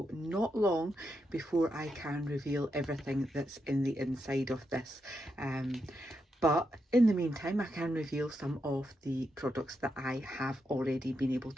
not long before I can reveal everything that's in the inside of this. But in the meantime, I can reveal some of the products that I have already been able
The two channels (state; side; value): normal; both; correlation 0.84